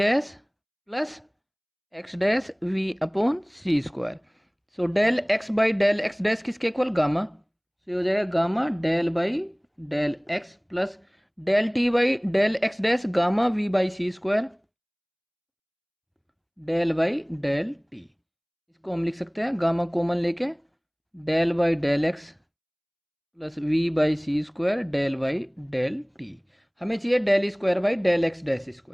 plus x dash v upon c square. So del x by del x dash किसके equal, gamma, so हो जाएगा gamma del by del x plus del t by del x dash gamma v by C square, del by del t. इसको हम लिख सकते हैं gamma common लेके del by del x plus v by C square, del by del t. हमें चाहिए del square by del x dash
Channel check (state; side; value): identical; both; correlation 1.00